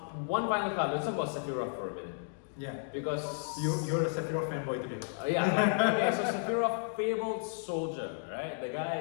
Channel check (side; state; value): right; silent; digital silence